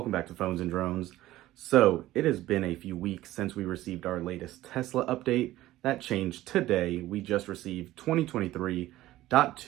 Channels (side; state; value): left; quieter; 15.7 dB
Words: back to Phones and Drones. So it has been a few weeks since we received our latest Tesla update. That changed today. We just received